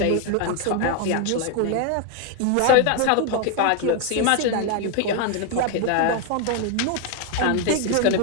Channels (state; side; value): different; both; correlation 0.01